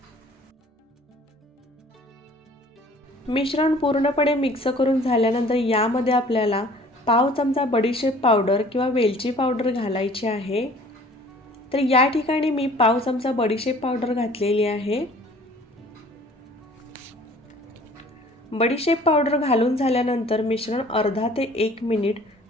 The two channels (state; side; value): normal; both; correlation 0.51